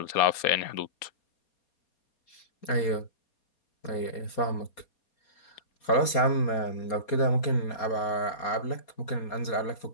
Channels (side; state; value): right; late; 4.2 ms